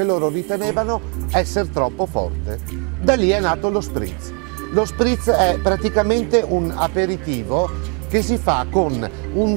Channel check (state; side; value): quieter; left; 36.5 dB